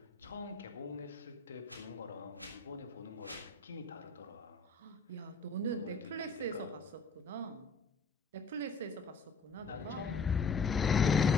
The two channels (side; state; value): right; quieter; 4.2 dB